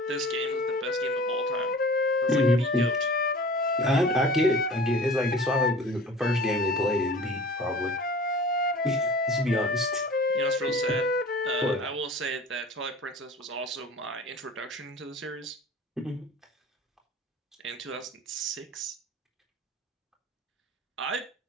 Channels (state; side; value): normal; both; correlation 0.42